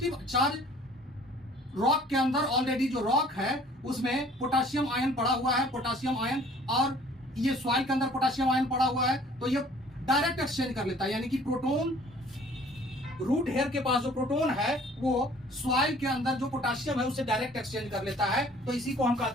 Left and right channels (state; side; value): normal; both; correlation 0.53